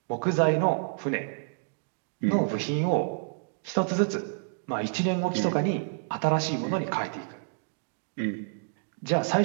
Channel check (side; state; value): left; silent; digital silence